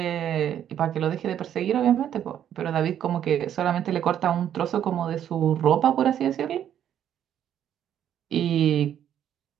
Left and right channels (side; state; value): left; quieter; 10.1 dB